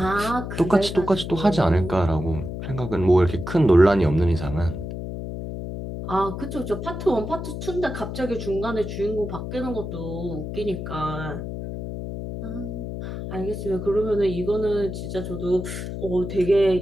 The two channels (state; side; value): noise; left; hum, 6 dB below the sound